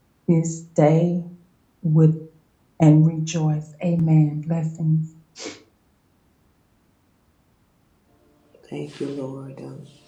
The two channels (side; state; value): both; identical; correlation 1.00